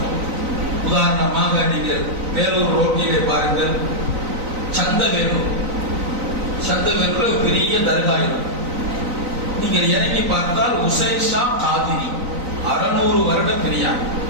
உதாரணமாக நீங்கள் வேலூர் ரோட்டிலே பாருங்கள், சந்தவேலூர். சந்தவேலூர் பெரிய தர்கா இருக்கும். நீங்கள் இறங்கி பார்த்தால் உசைன் ஷா காதிரி, 600 வருட பெரியார்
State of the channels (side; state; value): left; late; 3.9 ms